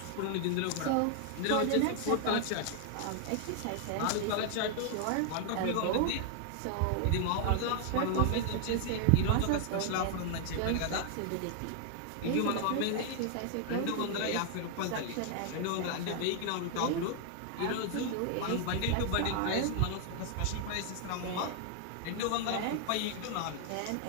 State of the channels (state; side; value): different; both; correlation 0.00